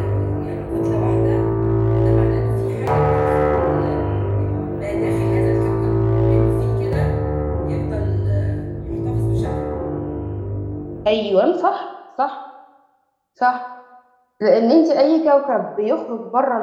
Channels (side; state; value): both; identical; correlation 1.00